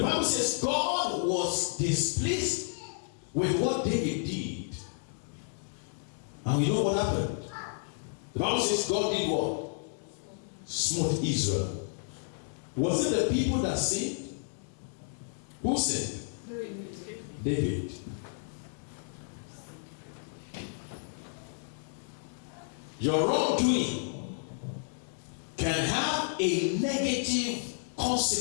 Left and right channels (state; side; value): silent; right; digital silence